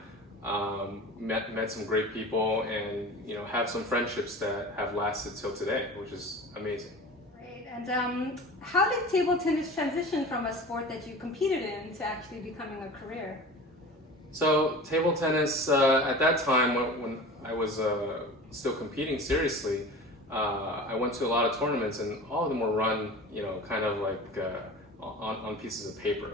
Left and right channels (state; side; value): normal; both; correlation 0.36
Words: Met some great people, and have some friendships that have lasted till today, which is amazing. Great. And how did table tennis transition from a sport that you competed in to actually becoming a career? So table tennis at that time, when I was still competing seriously, I went to a lot of tournaments, and all of them were run kind of like on pieces of